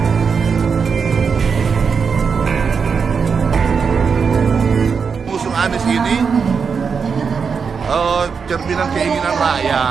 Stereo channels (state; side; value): quieter; left; 5.8 dB